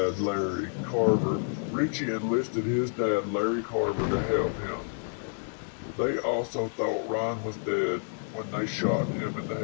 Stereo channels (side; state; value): right; silent; digital silence